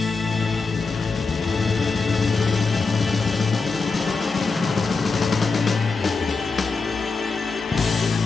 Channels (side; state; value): right; quieter; 4.3 dB